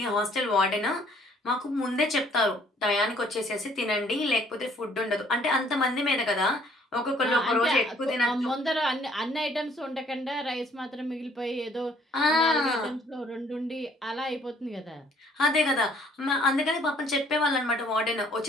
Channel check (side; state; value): both; normal; correlation 0.61